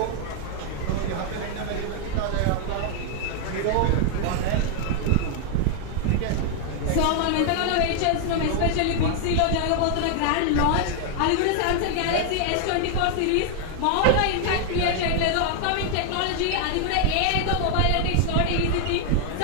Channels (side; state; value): both; different; correlation 0.00